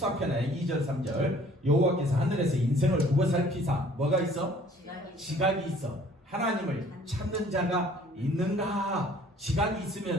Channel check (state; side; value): normal; both; correlation 0.55